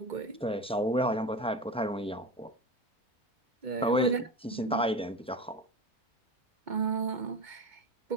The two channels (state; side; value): normal; both; correlation 0.27